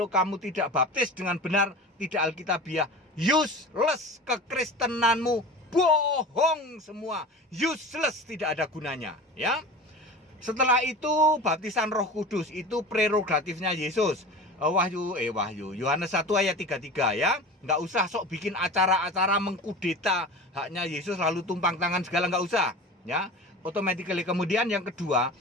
kamu tidak baptis dengan benar, tidak Alkitabiah, useless kekristenanmu, bohong semua, useless, tidak ada gunanya ya. Setelah itu baptisan Roh Kudus, itu prerogatifnya Yesus. Yohanes 1 ayat 33 ya. Nggak usah sok bikin acara-acara mengkudeta haknya Yesus lalu tumpang tangan segala, nggak usah ya. Automatically. Kemudian yang kedua,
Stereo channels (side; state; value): both; normal; correlation 0.34